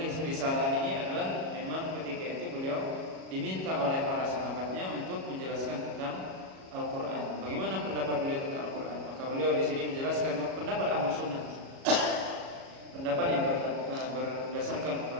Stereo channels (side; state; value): left; late; 37 ms